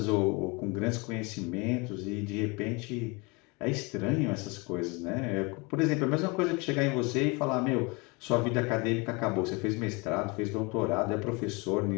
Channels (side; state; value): right; quieter; 28.1 dB